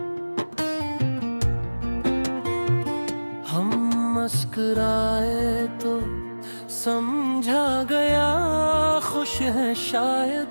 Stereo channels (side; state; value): both; inverted; correlation -1.00